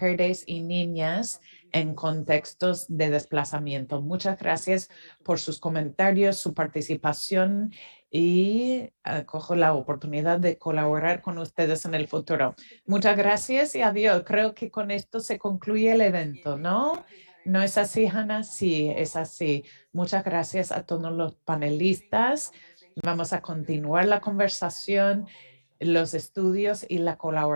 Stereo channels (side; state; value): both; inverted; correlation -1.00